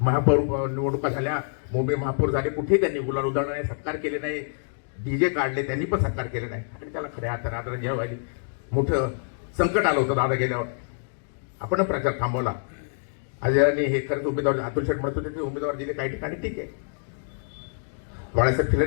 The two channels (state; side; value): silent; right; digital silence